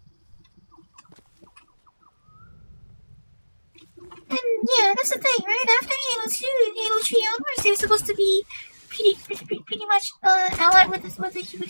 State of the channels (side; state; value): both; inverted; correlation -1.00